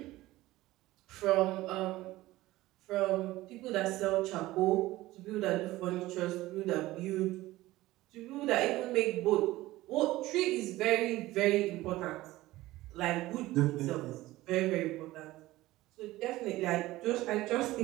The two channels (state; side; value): quieter; left; 17.5 dB